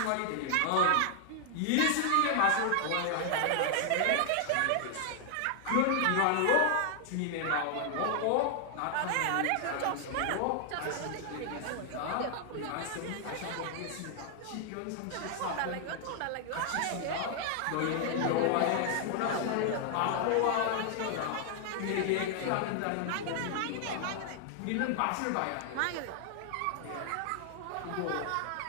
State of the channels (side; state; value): both; different; correlation 0.00